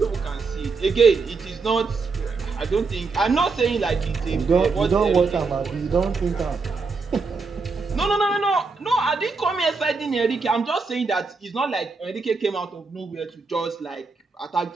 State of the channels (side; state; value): left; quieter; 4.3 dB